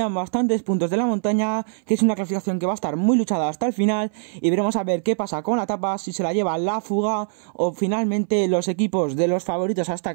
bastantes puntos de la montaña, que es una clasificación que va a estar muy luchada hasta el final, y veremos a ver qué pasa con la etapa, si se la lleva la fuga o finalmente los equipos de los favoritos a esta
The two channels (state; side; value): silent; left; 61 dB below the other